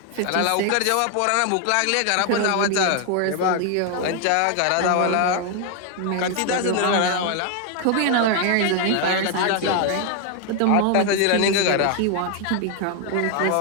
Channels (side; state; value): both; different; correlation 0.01